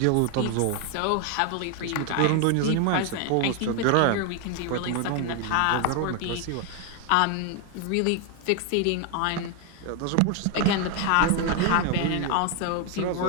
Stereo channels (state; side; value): different; both; correlation 0.01